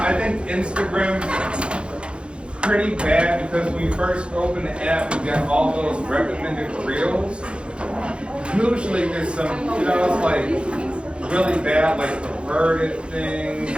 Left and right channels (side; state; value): left; late; 0.057 ms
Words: I think Instagram's pretty bad because when you first open the app, you got all those recommended reels. Usually there's some, it's like really bad, like perverted things